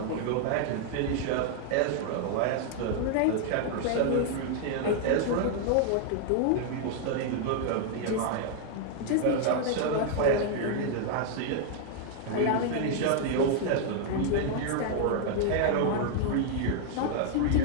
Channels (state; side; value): different; both; correlation 0.00